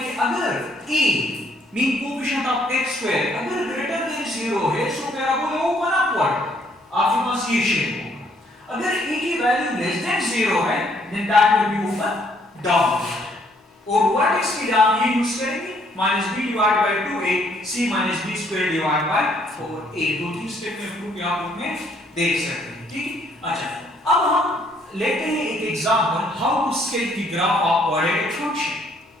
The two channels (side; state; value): both; normal; correlation 0.66